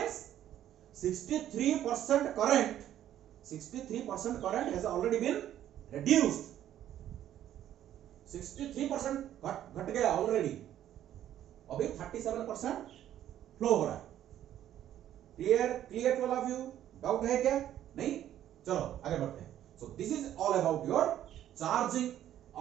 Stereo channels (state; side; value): quieter; left; 11.6 dB